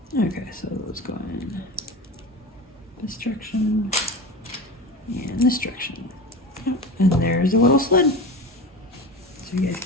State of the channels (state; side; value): normal; both; correlation 0.29